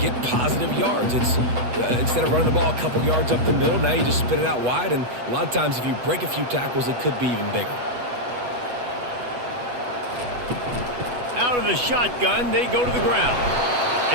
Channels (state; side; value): late; left; 8.1 ms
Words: positive yards. It's instead of running the ball a couple yards up the middle, now you just spit it out wide, and a lot of times if you break a few tackles, it could be even bigger. Out of the shotgun, they go to the ground.